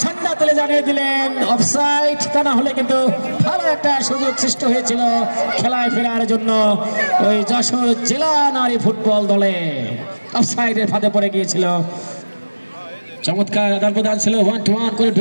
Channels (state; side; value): inverted; both; correlation -1.00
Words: ঝান্ডা তুলে জানিয়ে দিলেন অফসাইড, তা না হলে কিন্তু ভালো একটা সুযোগ সৃষ্টি হয়েছিল খেলায় ফেরার জন্য ওই যশোর জেলা নারী ফুটবল দলে। অফসাইডের ফাঁদে পড়ে গিয়েছিল। চমৎকার আদান প্রদান ছিল, 1-1 করে